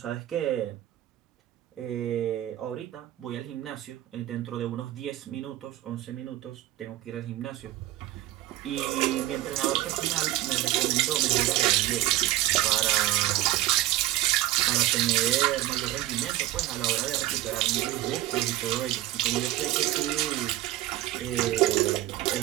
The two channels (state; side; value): quieter; left; 14.9 dB